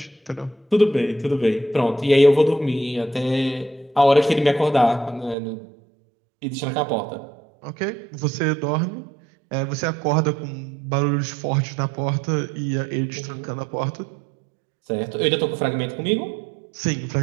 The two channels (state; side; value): drops out; left; at 5.4 s